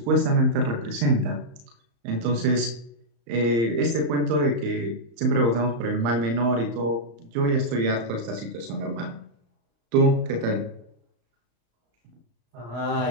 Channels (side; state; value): left; late; 35 ms